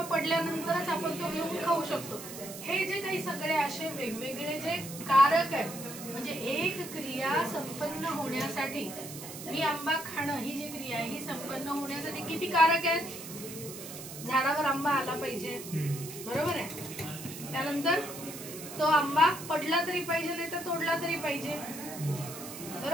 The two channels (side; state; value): right; noise; hiss, 11 dB below the sound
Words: पडल्यानंतरच आपण तो घेऊन खाऊ शकतो. हे जे काही सगळे असे वेगवेगळे जे कारक आहेत, म्हणजे एक क्रिया संपन्न होण्यासाठी, ही आंबा खाणं ही जी क्रिया आहे ही संपन्न होण्यासाठी किती कारक आहेत. झाडावर आंबा आला पाहिजे, बरोबर आहे. त्यानंतर तो आंबा पडला तरी पाहिजे, नाही तर तोडला तरी पाहिजे,